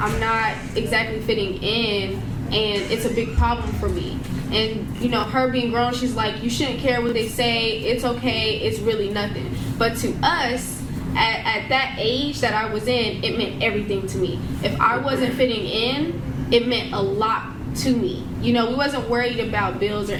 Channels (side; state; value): both; identical; correlation 1.00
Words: not exactly fitting in, and it's a big problem for me. And you know, her being grown, she's like, you shouldn't care what they say, it's okay, it's really nothing. But to us, at that age that I was in, it meant everything to me. If I wasn't fitting in, it meant a lot to me. You know, we wasn't worried about bills or